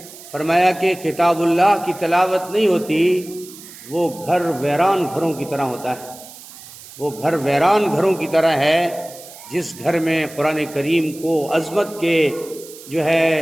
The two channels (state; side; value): noise; right; hiss, 18 dB below the sound